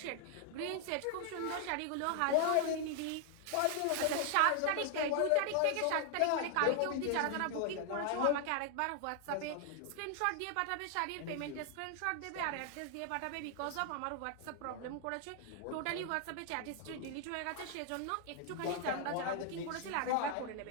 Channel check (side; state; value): both; different; correlation 0.00